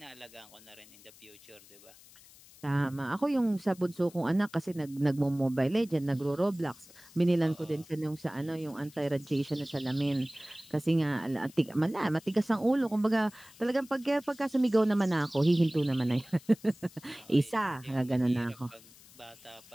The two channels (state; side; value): noise; left; hiss, 23 dB below the sound